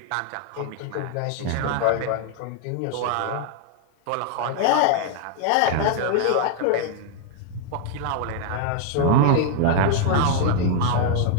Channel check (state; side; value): different; both; correlation 0.00